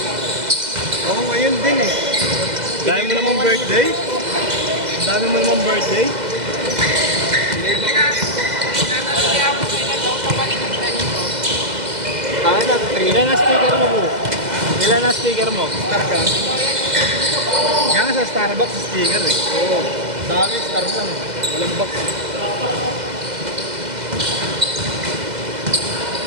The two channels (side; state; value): left; late; 2.0 ms